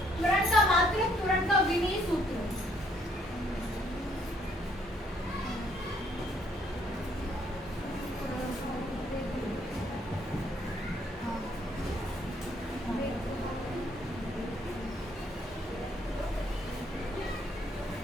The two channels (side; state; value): both; normal; correlation 0.67